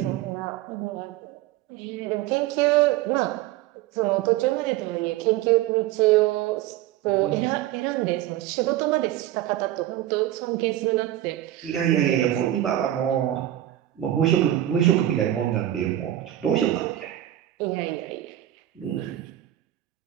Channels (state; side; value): quieter; left; 13.4 dB